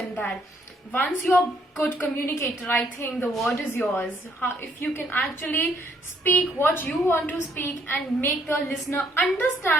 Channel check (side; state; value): both; normal; correlation 0.68